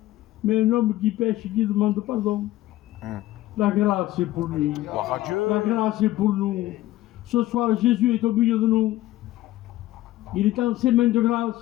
Mais un homme qui pêche, qui demande pardon. La grâce est pour lui. Gloire à Dieu. La grâce est pour nous. Ce soir, Jésus est au milieu de nous. Il est en ses mains de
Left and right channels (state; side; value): quieter; right; 15.7 dB